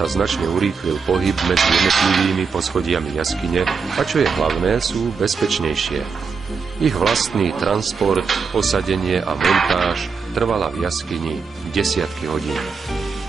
značne urýchlil pohyb medzi jednotlivými poschodiami jaskyne a čo je hlavné, sú bezpečnejšie. Ich vlastný transport, posadenie a montáž trvala v jaskyni desiatky hodín.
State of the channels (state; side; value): quieter; left; 5.4 dB